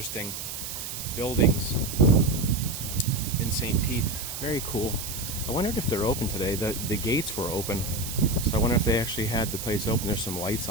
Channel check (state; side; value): noise; right; hiss, 7 dB below the sound